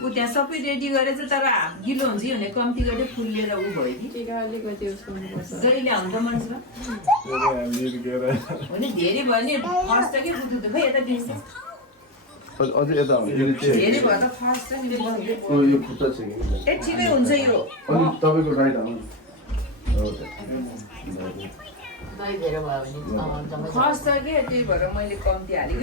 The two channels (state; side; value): normal; both; correlation 0.11